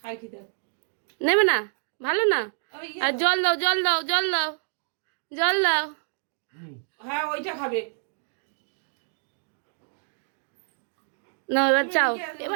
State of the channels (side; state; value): left; silent; digital silence